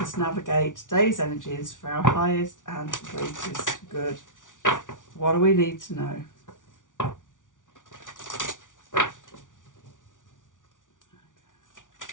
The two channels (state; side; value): late; right; 0.88 ms